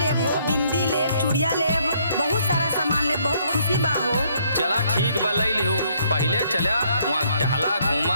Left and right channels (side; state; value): both; inverted; correlation -0.68